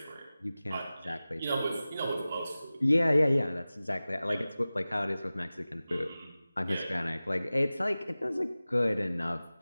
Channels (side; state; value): both; inverted; correlation -0.97